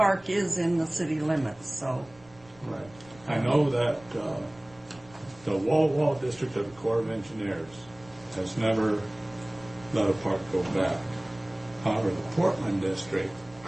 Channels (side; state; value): right; noise; rumble, 25 dB below the sound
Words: is in the city limits, so. Right. I know that the Wall district of the Corps of Engineers has never let a park go back. However, the Portland district,